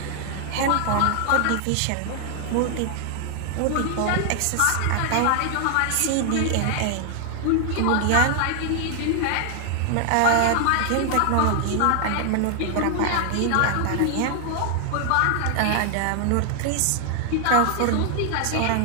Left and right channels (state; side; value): different; both; correlation 0.00